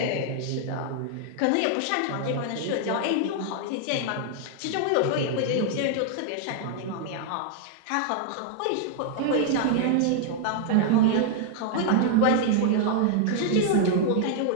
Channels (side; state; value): both; different; correlation 0.00